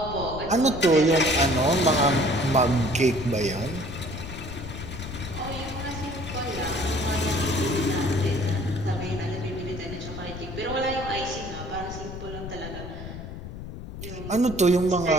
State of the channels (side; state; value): left; noise; rumble, 10 dB below the sound